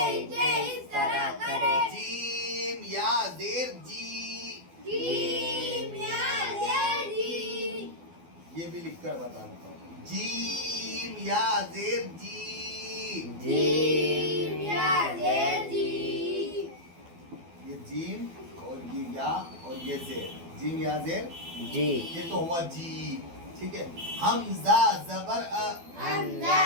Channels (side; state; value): left; late; 12 ms